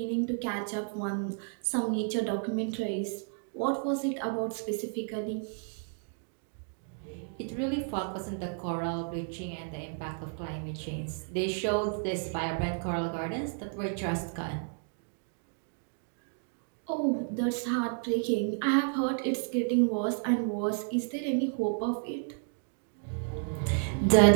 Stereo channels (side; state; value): left; silent; 57 dB below the other